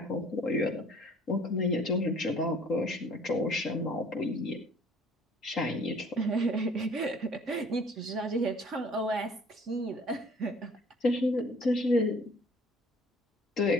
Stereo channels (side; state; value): both; normal; correlation 0.53